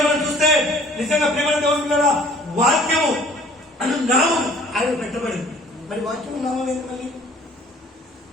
మనం చూస్తే నిజంగా ప్రేమ దేవుడు వాక్యము అను నామం ఆయన పెట్టబడింది. మరి వాక్యము నామం ఏంటి? మళ్ళీ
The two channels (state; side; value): normal; both; correlation 0.52